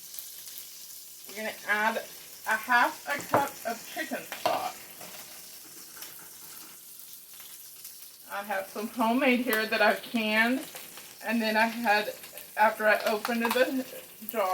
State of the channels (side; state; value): both; identical; correlation 1.00